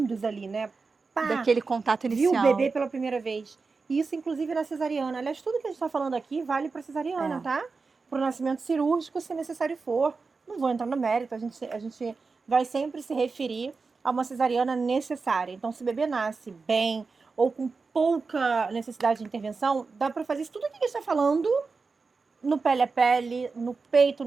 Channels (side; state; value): left; quieter; 4.4 dB